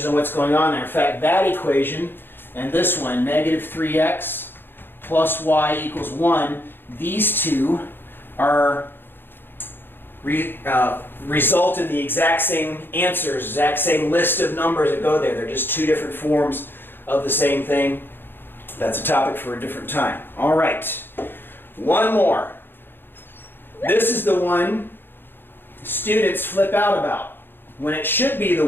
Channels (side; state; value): right; late; 0.10 ms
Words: on what's going on there. In fact, that equation and this one, negative 3x plus y equals 1, these two are result in the exact same answers, exact same list of numbers that go there. They're just two different forms of the same thing. That's a topic for a different time. All right, one more. This is the one students flip out about, when it should be the